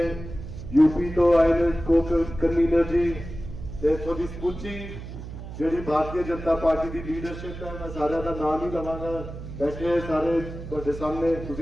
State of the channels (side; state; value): right; noise; hum, 11 dB below the sound